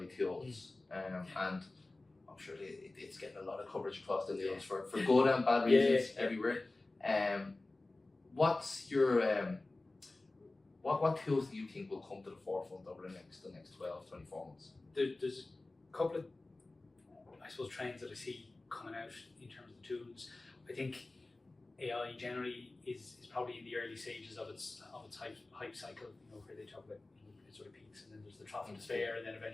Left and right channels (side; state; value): right; quieter; 3.1 dB